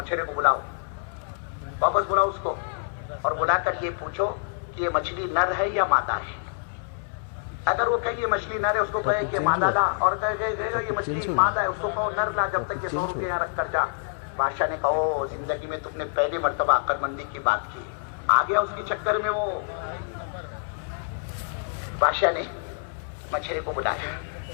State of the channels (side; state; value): right; silent; 58 dB below the other